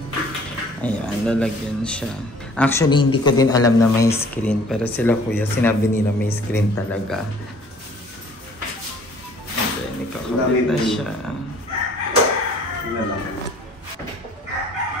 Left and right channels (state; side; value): normal; both; correlation 0.54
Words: Ayan, lalagyan siya. Actually, hindi ko din alam na may screen. Pero sila kuya, sinabi nila may screen talaga. And then, ikakabit na siya.